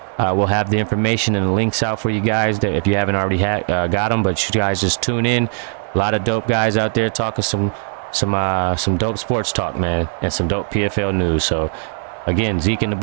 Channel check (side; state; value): left; silent; 55 dB below the other